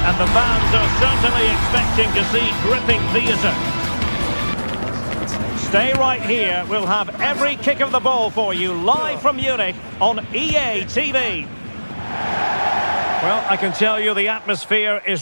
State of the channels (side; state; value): both; inverted; correlation -1.00